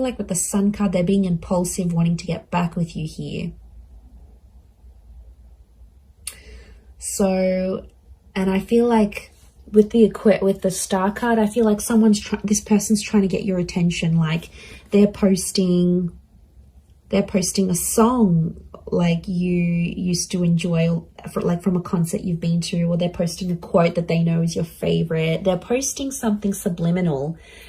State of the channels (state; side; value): identical; both; correlation 1.00